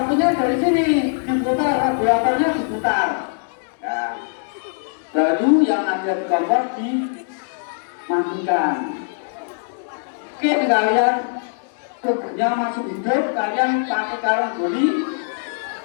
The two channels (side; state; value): right; silent; digital silence